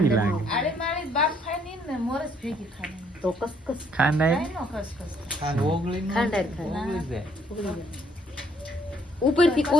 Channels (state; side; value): normal; both; correlation 0.67